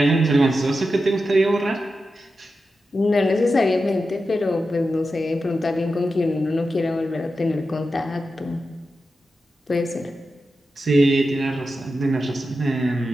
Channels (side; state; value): both; normal; correlation 0.90